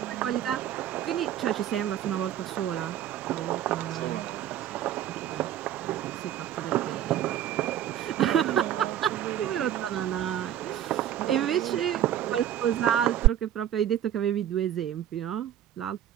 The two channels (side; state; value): left; quieter; 11.1 dB